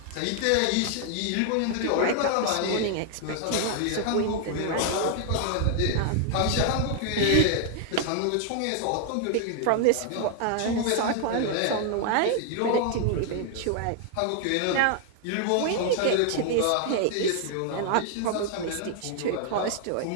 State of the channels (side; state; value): both; different; correlation 0.00